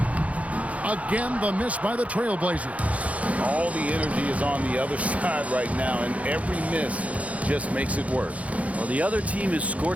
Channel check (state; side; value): late; left; 0.066 ms